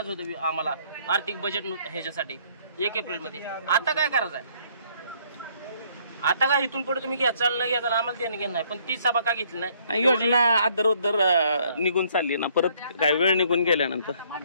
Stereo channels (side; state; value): both; inverted; correlation -0.64